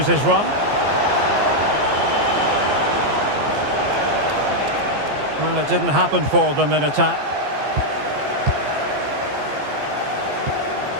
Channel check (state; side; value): late; left; 14 ms